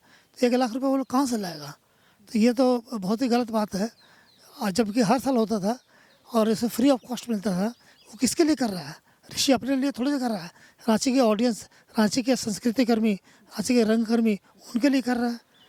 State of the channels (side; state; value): both; identical; correlation 1.00